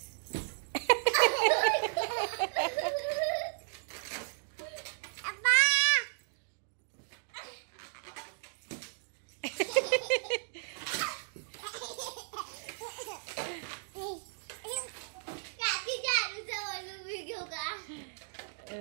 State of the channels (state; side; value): silent; left; digital silence